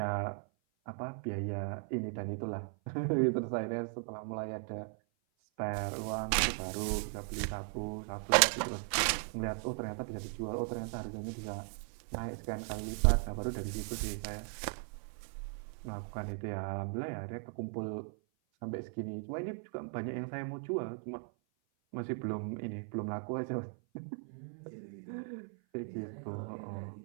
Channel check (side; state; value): left; silent; 53 dB below the other